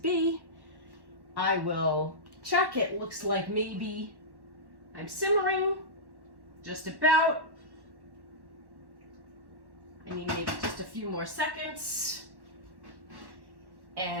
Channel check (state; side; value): late; left; 1.1 ms